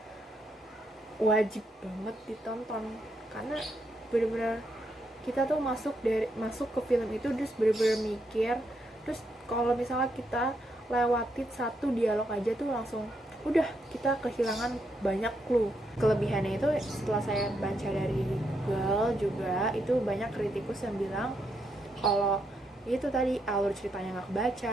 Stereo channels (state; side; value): normal; both; correlation 0.79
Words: wajib banget ditonton, karena bener-bener kita tuh masuk ke film itu terus bener-bener mikir. Terus kalau misalnya kita lewatin satu dialog aja tuh langsung udah kita kehilangan banyak clue. Kelebihannya itu setelah saya baca dari Google juga, itu banyak kritikus yang bilang kalau itu tadi alur ceritanya nggak